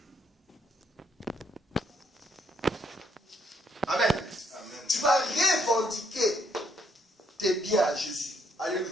Amen. Amen. Tu vas revendiquer tes biens à Jésus. Alléluia.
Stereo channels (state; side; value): normal; both; correlation 0.71